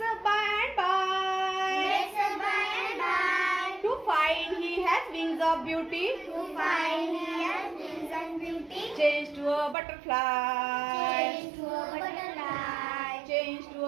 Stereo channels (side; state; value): left; drops out; at 9.8 s